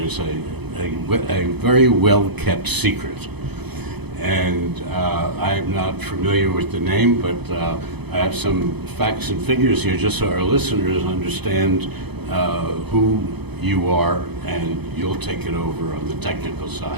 a very well-kept secret. And I'm not familiar with the name, but I have some facts and figures here just so our listeners understand who you are, and you'll take it over on the technical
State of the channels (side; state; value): left; late; 0.98 ms